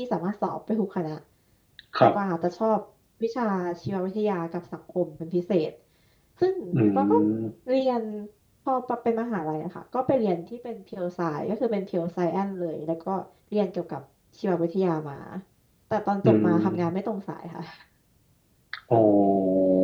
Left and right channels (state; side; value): identical; both; correlation 1.00